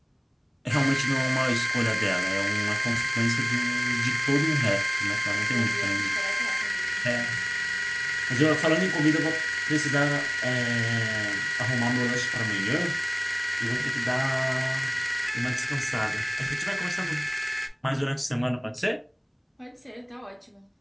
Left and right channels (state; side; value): identical; both; correlation 1.00